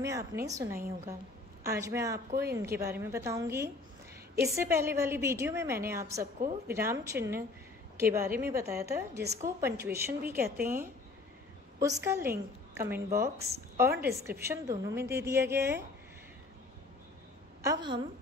आपने सुना ही होगा। आज मैं आपको इनके बारे में बताऊंगी। इससे पहले वाली वीडियो में मैंने आप सबको विराम चिन्ह के बारे में बताया था, जिसको पंक्चुएशन भी कहते हैं। उसका लिंक कमेंट बॉक्स और डिस्क्रिप्शन दोनों में दे दिया गया है। अब हम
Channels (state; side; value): quieter; right; 3.5 dB